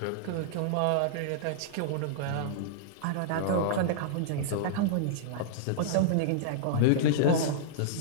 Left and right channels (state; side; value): different; both; correlation -0.02